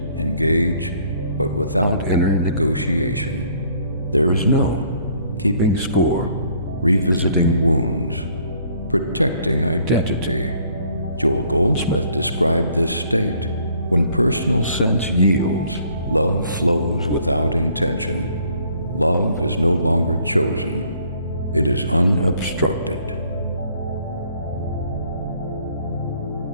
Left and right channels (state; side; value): inverted; both; correlation -0.61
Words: engage, but without inner negotiation. There is no keeping score, revisiting wounds, protecting identity. Joel Goldsmith described this state. When personal sense yields, love flows without intention. Love is no longer chosen. It is unobstructed.